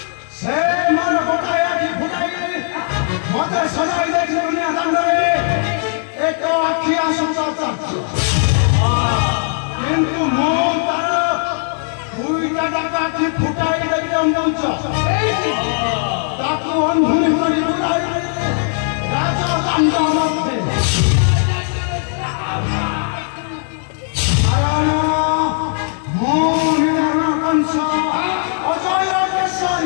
Se mar gotai aki futai. Mate sadai dekhe dunia dando re. Eko akhiya sumata. Kintu mo taro duita taka ki futai dekhe moncha. ताकि अंधुनी करी बुलाई राजा कांडा मध्य आयाना मोहिना कंसा अजय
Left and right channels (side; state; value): right; silent; 61 dB below the other